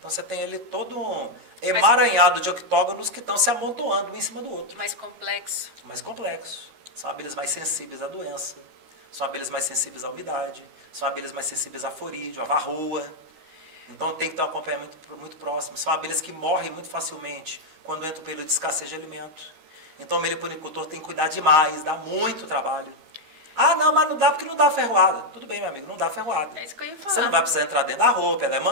você tem ali todo um emaranhado de octógonos que estão se amontoando um em cima do outro. Mais complexo. Mais complexo. São abelhas mais sensíveis à doença. São abelhas mais sensíveis à umidade. São abelhas mais sensíveis à forídeo, à varroa. Então tem que ter um acompanhamento muito próximo. São abelhas que morrem muito facilmente quando entra o período de escassez de alimento. Então o meliponicultor tem que cuidar demais, dá muito trabalho. Não, mas não dá porque não dá ferroada. Tudo bem, meu amigo, não dá ferroada. É isso que eu ia falar. Você não vai precisar entrar dentro da roupa, ela é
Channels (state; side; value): late; left; 13 ms